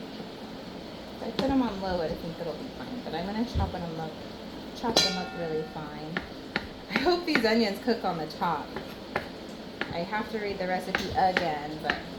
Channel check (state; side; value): identical; both; correlation 1.00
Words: If I put them on low, I think it'll be fine. But I'm gonna chop them up really fine. I hope these onions cook on the top. I have to read the recipe again, but